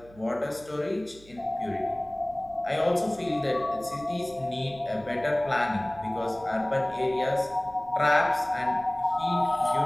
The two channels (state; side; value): noise; right; hum, 24 dB below the sound